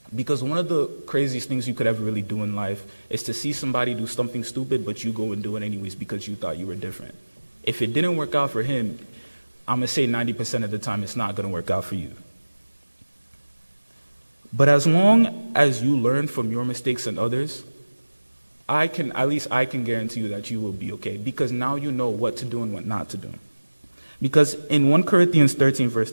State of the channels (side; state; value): both; inverted; correlation -1.00